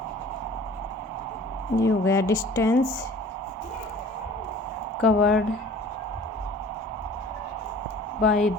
ये हो गया distance covered by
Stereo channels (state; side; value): normal; both; correlation 0.47